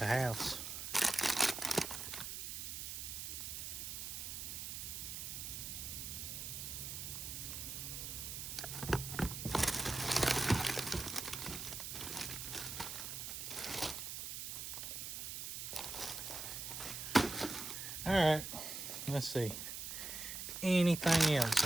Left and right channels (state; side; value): noise; right; hiss, 6 dB below the sound